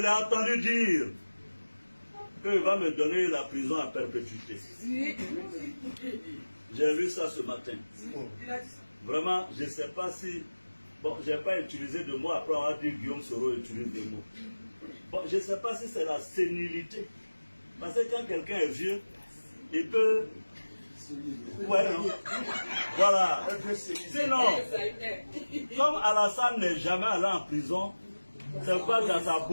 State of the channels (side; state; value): both; inverted; correlation -1.00